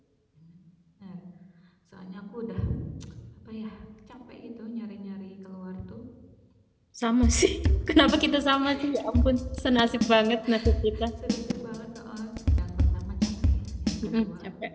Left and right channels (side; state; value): both; identical; correlation 1.00